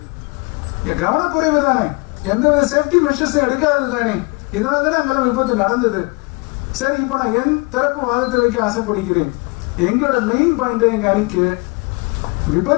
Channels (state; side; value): quieter; right; 28.6 dB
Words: கவனக்குறைவு தானே, எந்தவித சேஃப்டி மெஷர்ஸும் எடுக்காதது தானே. இதனால தானே அங்கெல்லாம் விபத்து நடந்தது. சரி, இப்போ நான் என் தரப்பு வாதத்தை வைக்க ஆசைப்படுகிறேன். எங்களோட மெயின் பாயிண்ட், எங்க அணிக்கு